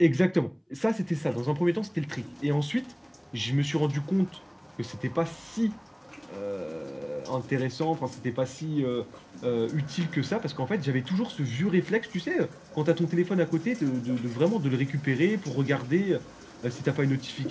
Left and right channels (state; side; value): identical; both; correlation 1.00